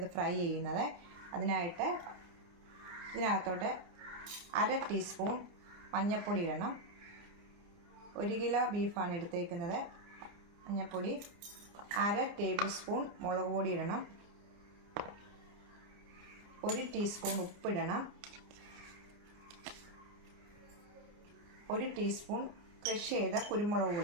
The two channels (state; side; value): late; left; 29 ms